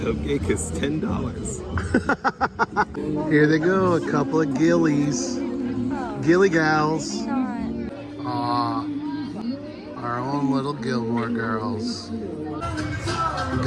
is $10. Here they go, a couple of gillies. Gilly gals. Aw. Our own little Gilmore Girls.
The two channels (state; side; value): identical; both; correlation 1.00